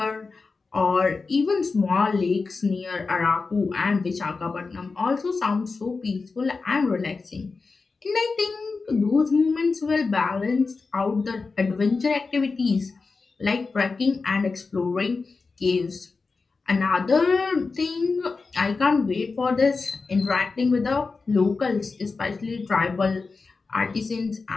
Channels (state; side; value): quieter; right; 4.3 dB